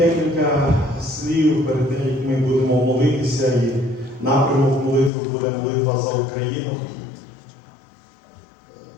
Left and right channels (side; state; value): right; drops out; at 5.1 s